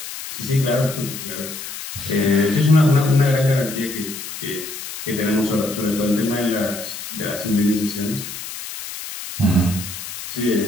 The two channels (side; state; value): left; noise; hiss, 9 dB below the sound